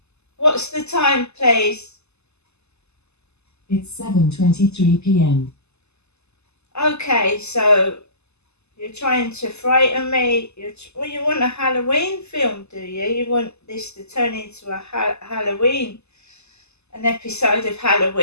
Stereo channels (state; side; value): late; right; 0.80 ms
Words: what's the time, please? It's 7:23 p.m. Okay, so you're trying to frighten me. You want a Halloween film, do you? You want this to turn into a Halloween, an episode of